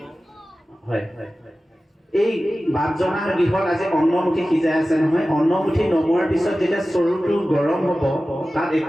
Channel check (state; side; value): normal; both; correlation 0.95